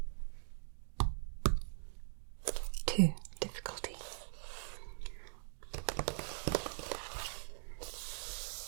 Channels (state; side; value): silent; left; digital silence